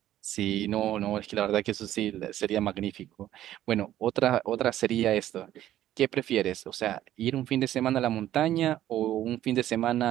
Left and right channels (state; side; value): quieter; left; 12.8 dB